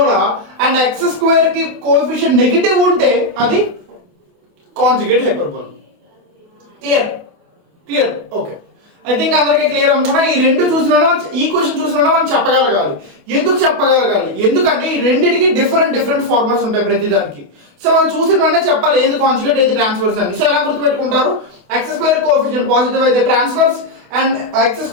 అండ్ x² కి కోఎఫిషియంట్ నెగిటివ్ ఉంటే అది conjugate hyperbola. Clear okay, I think అందరికీ క్లియర్ అనుకున్నా. ఈ రెండు చూసినా ఈక్వేషన్ చూసినా మనం చెప్పగలగాలి. ఎందుకు చెప్పగలగాలి? ఎందుకంటే ఈ రెండింటికి డిఫరెంట్ ఫార్ములాస్ ఉంటాయి ప్రతిదానికి. సో మనం చూసిన వెంటనే చెప్పాలి ఏది కాంజుగేట్ ఏది ట్రాన్స్ఫర్స్ అని. సో ఎలా గుర్తుపెట్టుకుంటారు? x² కోఎఫిషియంట్ పాజిటివ్ అయితే transverse, and x²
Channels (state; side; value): late; left; 28 ms